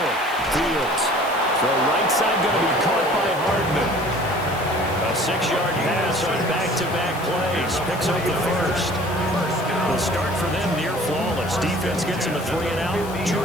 Fields. Throw right side going to be caught by Hardman. A 6-yard pass on back-to-back plays. Picks up the first. The start for them near flawless. Defense gets them a 3-and-out. 2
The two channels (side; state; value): left; noise; hiss, 17 dB below the sound